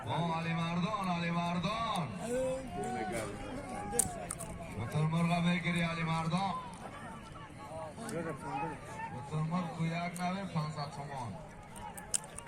علی مردان علی مردان بطر مرغ میگیری علی مردان بطر مرغ کو یک نوی 500 تومان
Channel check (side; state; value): both; identical; correlation 1.00